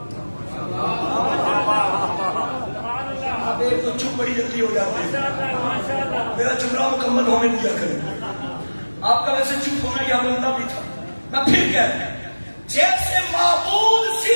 اب ایک تو چپ بڑی جلدی ہو جاتی ہے، میرا جملہ مکمل ہونے دیا کریں. آپ کا ویسے چپ ہونا یا بنتا بھی تھا. میں پھر کہتا ہوں جیسے معبود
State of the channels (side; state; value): both; inverted; correlation -1.00